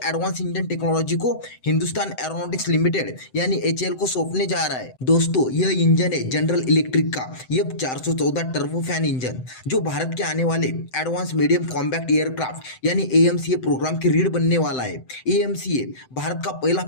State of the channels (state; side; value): late; right; 7.8 ms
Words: एडवांस इंजन टेक्नोलॉजी को हिंदुस्तान एरोनॉटिक्स लिमिटेड यानी एचएएल को सौंपने जा रहा है। दोस्तों, यह इंजन है जनरल इलेक्ट्रिक का एफ 414 टर्बोफैन इंजन, जो भारत के आने वाले एडवांस मीडियम कॉम्बैक्ट एयरक्राफ्ट यानी एएमसीए प्रोग्राम की रीढ़ बनने वाला है। एएमसीए भारत का पहला